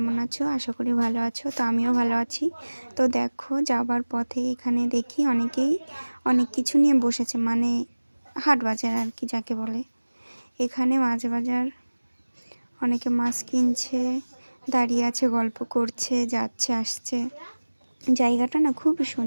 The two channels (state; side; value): inverted; both; correlation -1.00